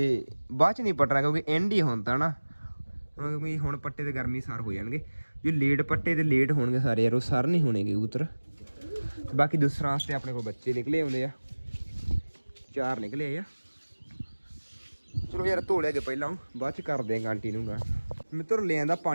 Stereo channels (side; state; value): both; inverted; correlation -1.00